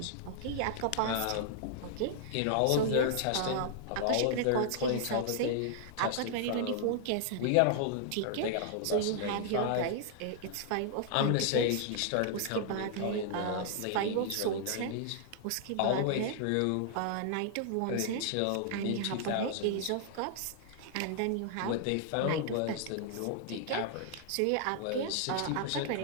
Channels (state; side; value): different; both; correlation -0.01